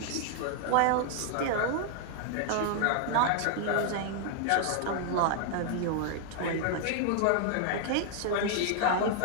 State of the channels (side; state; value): both; different; correlation 0.00